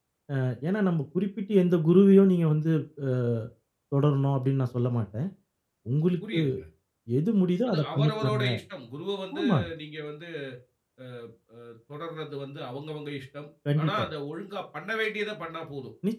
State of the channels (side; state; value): both; identical; correlation 1.00